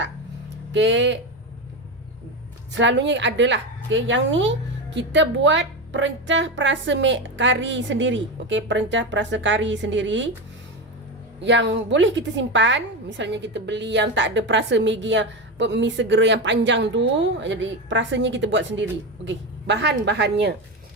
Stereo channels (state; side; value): normal; both; correlation 0.17